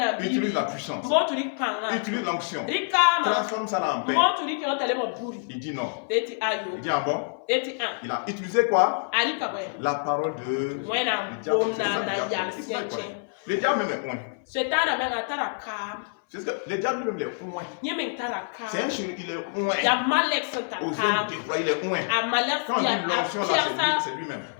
Utilise la puissance. Utilise l'onction. Transforme ça là en paix. Il dit non. Il dit ah bon? Il a utilisé quoi? La parole de diable. Le diable même est loin. C'est ce que le diable lui-même est loin. C'est un chéri, il est loin. Aux yeux déployés, il est loin. Quand on dit l'onction là, c'est lui-même.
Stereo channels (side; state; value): right; silent; 57 dB below the other